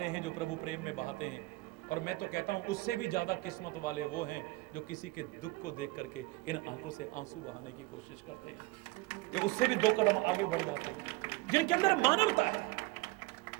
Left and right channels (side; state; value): left; quieter; 21.8 dB